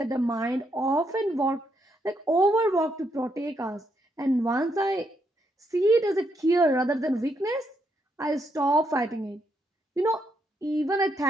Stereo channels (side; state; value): both; normal; correlation 0.77